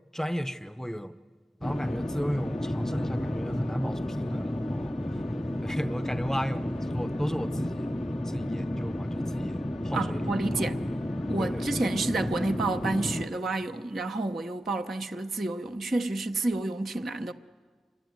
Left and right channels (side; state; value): both; normal; correlation 0.92